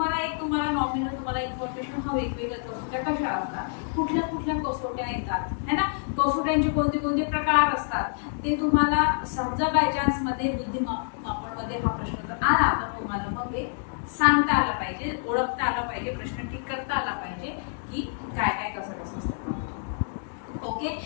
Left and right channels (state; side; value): silent; right; digital silence